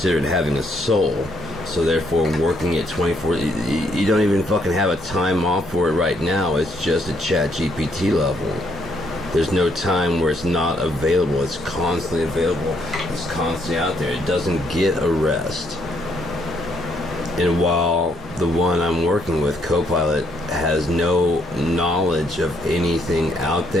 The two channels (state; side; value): normal; both; correlation 0.71